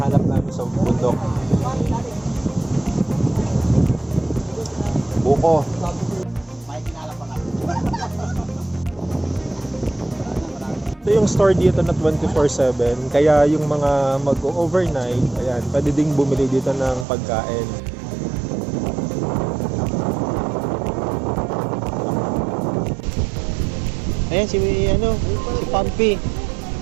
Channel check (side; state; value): left; drops out; at 17.1 s